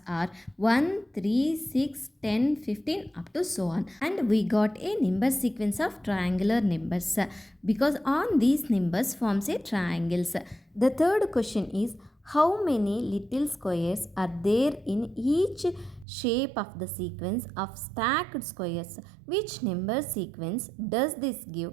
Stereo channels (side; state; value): left; drops out; at 16.1 s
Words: are 1, 3, 6, 10, 15 up to so on. And we got a number sequence of triangular numbers because on these numbers forms a triangles. The third question is how many little squares are there in each shape of the sequence of stacked squares? Which number sequence does this